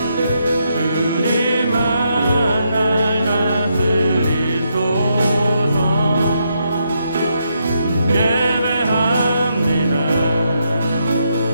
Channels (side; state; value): both; inverted; correlation -0.79